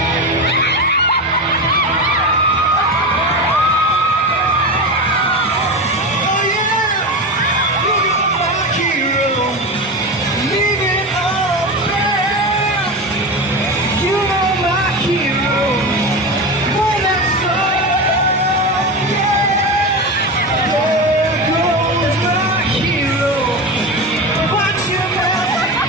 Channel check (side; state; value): both; normal; correlation 0.22